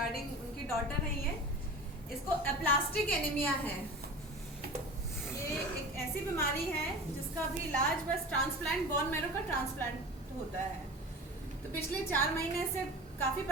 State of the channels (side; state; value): both; normal; correlation 0.34